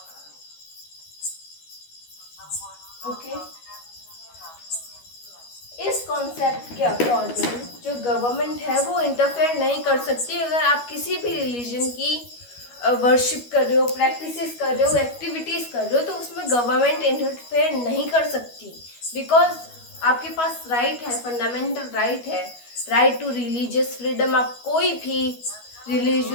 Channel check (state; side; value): late; right; 12 ms